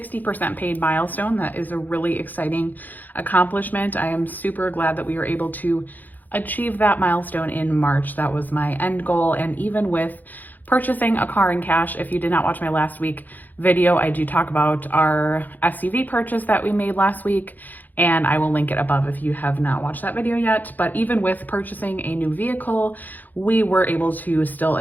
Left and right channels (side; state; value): right; late; 0.084 ms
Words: paid milestone. That is a really exciting accomplishment. I am super glad that we were able to achieve that milestone in March. That was my end goal. And even with purchasing a car in cash, if you did not watch my last week video, I do talk about our SUV purchase that we made last week, and I will link it above if you have not watched that video yet. But even with purchasing a new vehicle, we were able to still